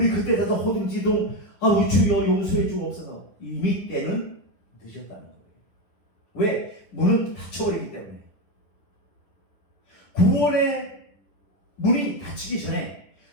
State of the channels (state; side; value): late; right; 10 ms